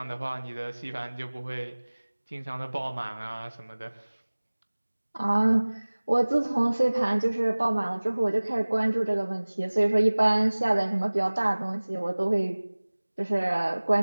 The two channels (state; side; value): inverted; both; correlation -1.00